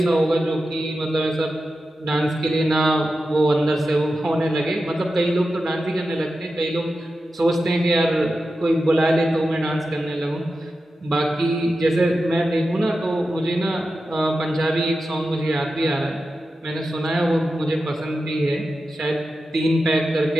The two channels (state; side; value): normal; both; correlation 0.91